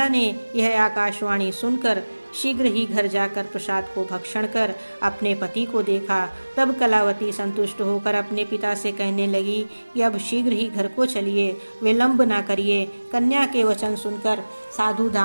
ने यह आकाशवाणी सुनकर शीघ्र ही घर जाकर प्रसाद को भक्षण कर अपने पति को देखा। तब कलावती संतुष्ट होकर अपने पिता से कहने लगी कि अब शीघ्र ही घर को चलिए, विलंब न करिए। कन्या के वचन सुनकर साधु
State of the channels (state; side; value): inverted; both; correlation -1.00